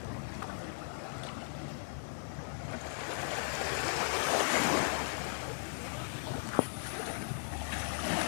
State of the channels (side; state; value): right; silent; digital silence